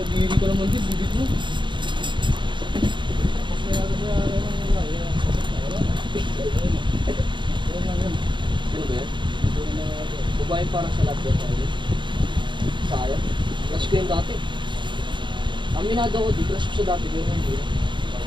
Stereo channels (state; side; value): late; left; 0.23 ms